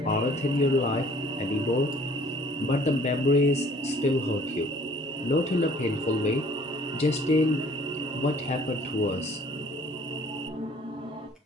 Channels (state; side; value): normal; both; correlation 0.55